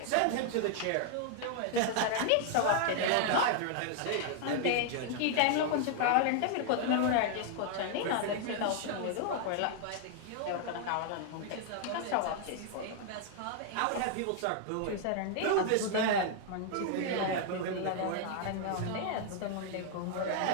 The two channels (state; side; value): different; both; correlation 0.00